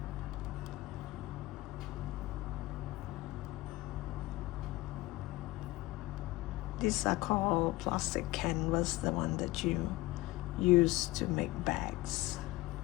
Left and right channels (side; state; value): right; quieter; 19.0 dB